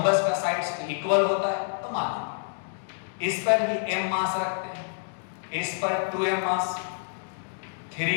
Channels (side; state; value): right; silent; digital silence